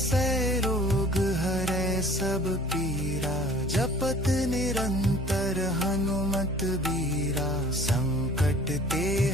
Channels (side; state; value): both; normal; correlation 0.50